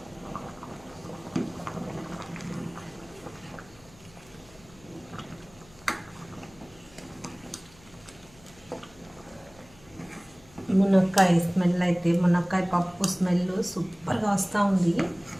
మునక్కాయ స్మెల్ అయితే, మునక్కాయ పప్పు స్మెల్ సూపర్గా వస్తూ ఉంది.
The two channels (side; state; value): left; noise; hum, 25 dB below the sound